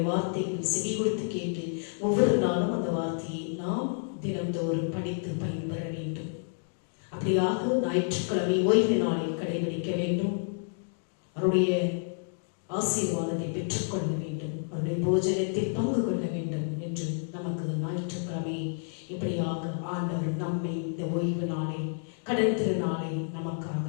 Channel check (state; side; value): silent; right; digital silence